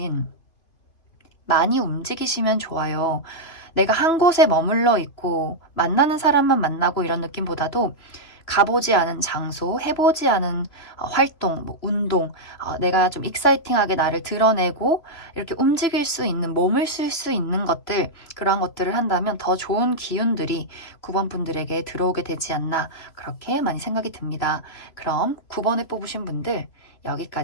많이 움직이시면 좋아요. 내가 한 곳에 머물러 있고 만나는 사람만 만나고 이런 느낌보다도 가보지 않은 장소, 해보지 않은 활동, 운동, 내가 좀 익사이팅하게 나를 드러내고 이렇게 움직일 수 있는, 몸을 쓸 수 있는 것들, 그러한 것들을 한다면 더 좋은 기운들이 9번 분들에게 들어오게 되지 않나, 그렇게 많이 생각이 듭니다. 그럼 9번을 뽑으신 분들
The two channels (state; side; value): late; right; 3.0 ms